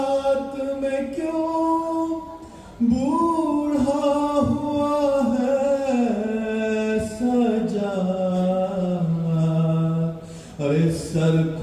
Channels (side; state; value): both; identical; correlation 1.00